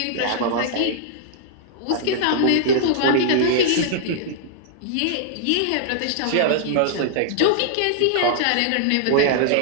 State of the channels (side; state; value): both; different; correlation -0.01